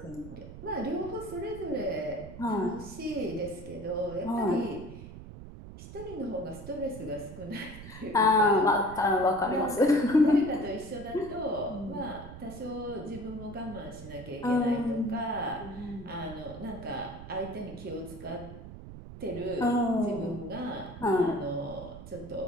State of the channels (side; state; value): right; noise; rumble, 13 dB below the sound